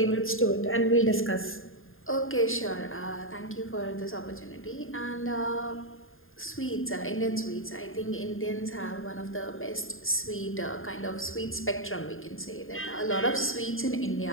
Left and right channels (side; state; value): right; late; 0.60 ms